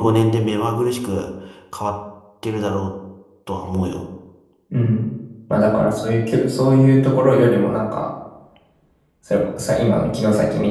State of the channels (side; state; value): both; identical; correlation 1.00